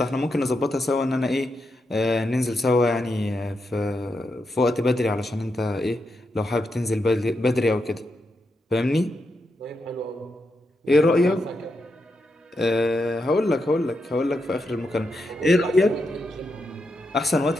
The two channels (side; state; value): both; normal; correlation 0.84